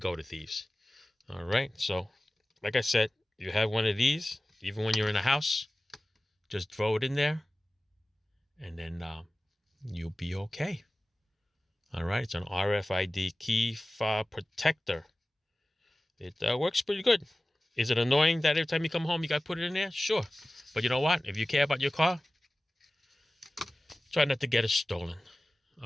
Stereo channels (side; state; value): both; normal; correlation 0.97